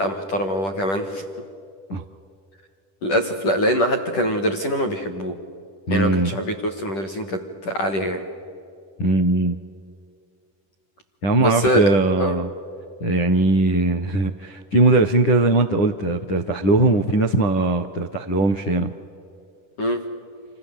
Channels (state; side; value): late; right; 10 ms